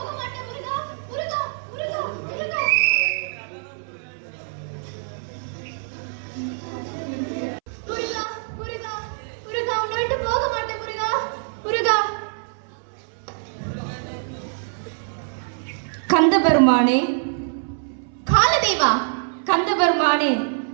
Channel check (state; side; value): silent; left; 62 dB below the other